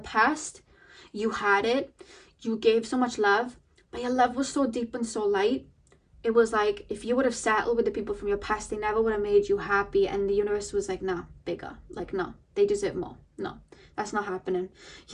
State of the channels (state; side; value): identical; both; correlation 1.00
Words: you had it, you gave so much love, but your love was so deep and so light. It was like if you would have settled with the people from your past, they never would have made you happy. And the universe was like, nah, bigger. Like, no, they deserve more. No, that's not happening.